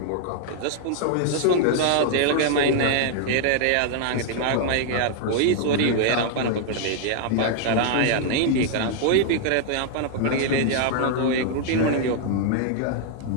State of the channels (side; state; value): both; different; correlation 0.00